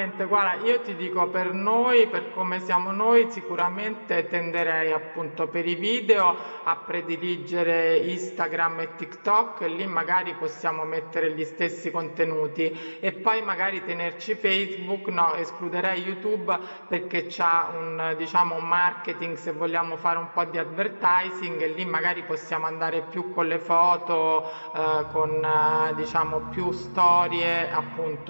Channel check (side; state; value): both; inverted; correlation -1.00